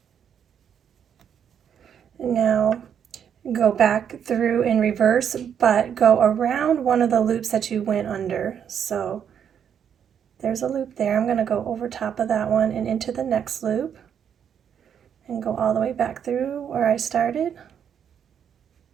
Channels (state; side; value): quieter; left; 8.3 dB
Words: Now go back through in reverse, but go around one of the loops that you went under. So there's a loop there. I'm going to go over top of that one and into the next loop and go all the way back through where I started.